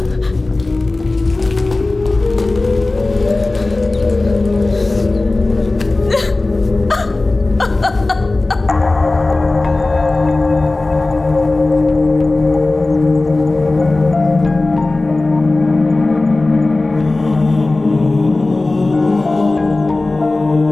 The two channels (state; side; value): quieter; right; 3.1 dB